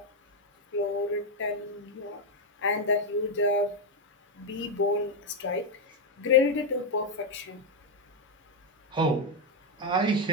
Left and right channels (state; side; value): normal; both; correlation 0.02